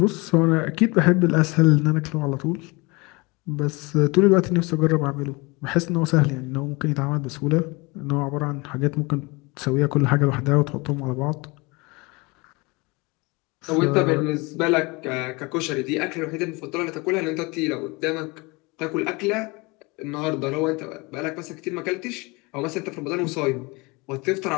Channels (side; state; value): right; quieter; 26.0 dB